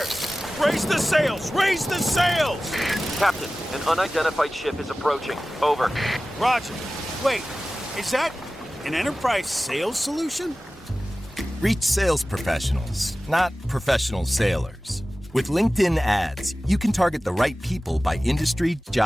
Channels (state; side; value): normal; both; correlation 0.96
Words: Raise the sails! Raise the sails! Captain, an unidentified ship is approaching. Over. Roger. Wait, is that an enterprise sales solution? Reach sales professionals, not professional sailors. With LinkedIn ads, you can target the right people by industry,